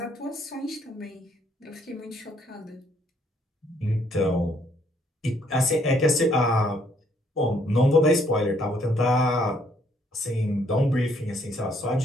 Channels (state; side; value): normal; both; correlation 0.67